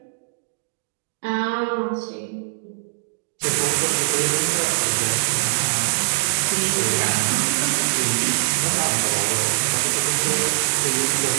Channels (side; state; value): left; silent; 64 dB below the other